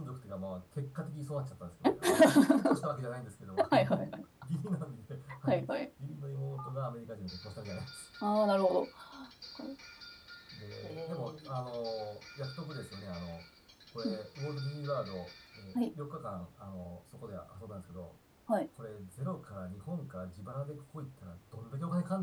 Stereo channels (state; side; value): identical; both; correlation 1.00